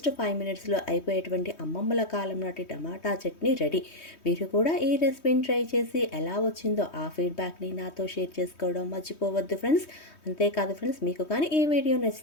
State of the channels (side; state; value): right; late; 3.2 ms